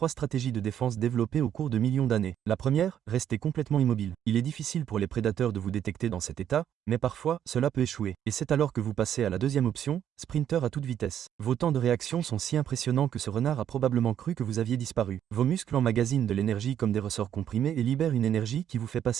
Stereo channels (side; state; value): left; quieter; 9.8 dB